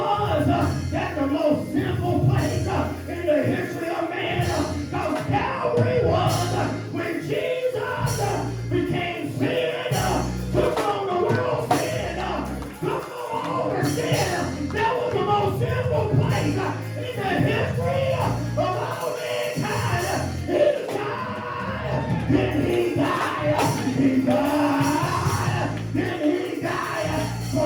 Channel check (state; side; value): identical; both; correlation 1.00